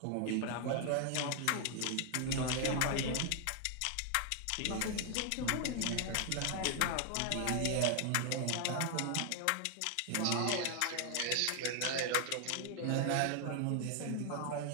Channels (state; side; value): different; both; correlation 0.00